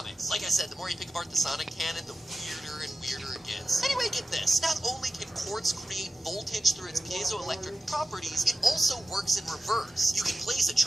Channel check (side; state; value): both; normal; correlation 0.94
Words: Like I said, the more you pick apart the Sonic canon, the weirder and weirder it gets. charges. Anyway, get this. Not only can quartz create voltage through its piezoelectric properties, it also works in reverse. You can place a